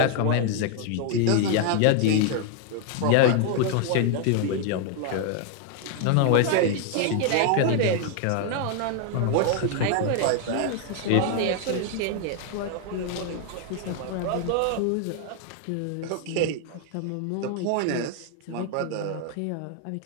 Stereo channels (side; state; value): both; different; correlation 0.00